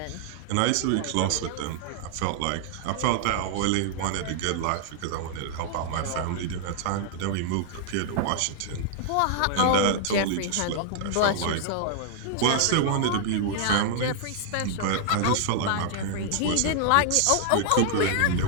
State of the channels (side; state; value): both; different; correlation -0.01